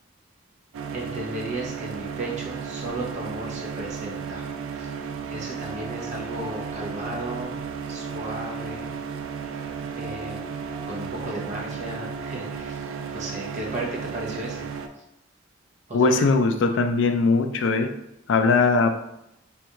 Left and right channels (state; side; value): normal; both; correlation 0.29